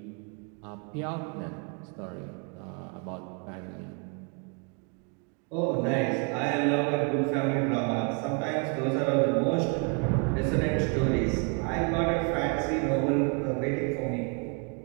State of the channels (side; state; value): left; quieter; 37.6 dB